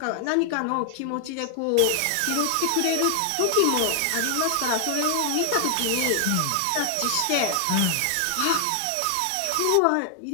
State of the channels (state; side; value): different; both; correlation 0.00